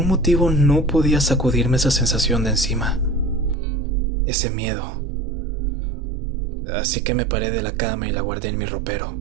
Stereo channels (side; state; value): left; drops out; at 3.6 s